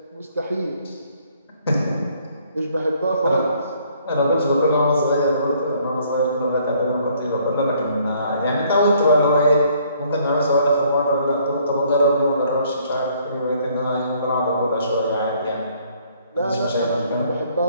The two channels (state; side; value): inverted; both; correlation -0.64